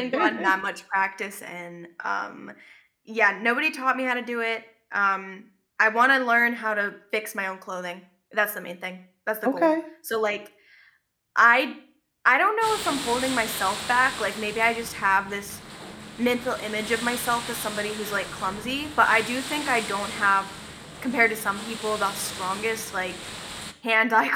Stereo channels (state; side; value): identical; both; correlation 1.00